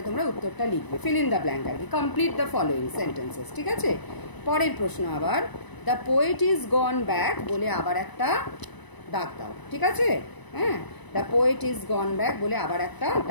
তোমরা উত্তরটা লিখবে, ফিল ইন দ্য ব্ল্যাঙ্ক আর কি, কমপ্লিট দ্য ফলোয়িং সেন্টেন্সেস। ঠিক আছে, পরের প্রশ্ন আবার the poet is gone back বলে আবার একটা দাগ দাও। ঠিক আছে, হ্যাঁ, the poet is gone back বলে আবার একটা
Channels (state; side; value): late; right; 1.0 ms